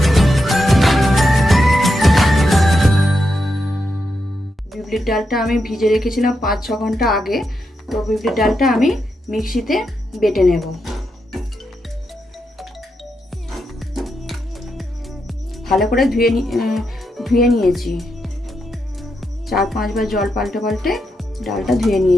বিউলির ডালটা আমি ভিজে রেখেছিলাম 5-6 ঘন্টা আগে। তো বিউলির ডালটা আমি মিক্সিতে বেটে নেব। ভালো করে ধুয়ে নিয়েছি। 4-5 বার জল পাল্টে পাল্টে ডালটা ধুয়ে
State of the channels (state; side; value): normal; both; correlation 0.84